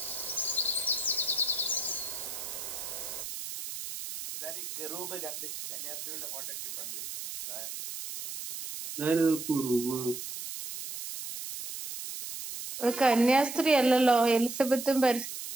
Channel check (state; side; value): noise; right; hiss, 8 dB below the sound